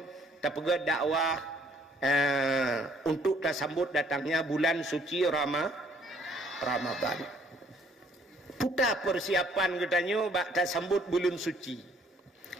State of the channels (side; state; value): both; normal; correlation 0.62